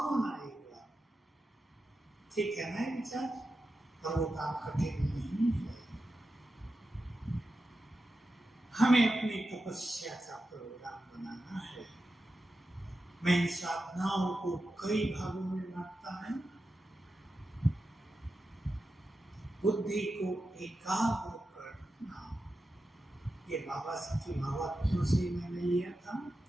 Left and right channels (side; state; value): both; normal; correlation 0.91